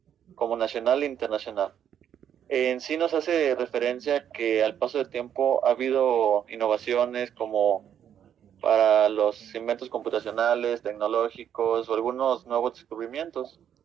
como nacional e internacional. En sí nos hace referencia que al paso del tiempo ha habido innovaciones como para los inventos computacionales, tecnológicos o algunos nuevos descubrimientos.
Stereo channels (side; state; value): left; quieter; 9.4 dB